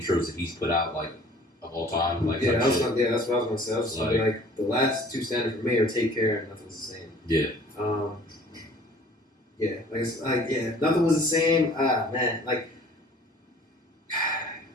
that he's put out like of all time. Like that's what I was gonna say. I was just like the last two standard for me are Take Care and Nothing Was the Same. Yeah. Nothing Was the Same. Man, like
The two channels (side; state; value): both; normal; correlation 0.51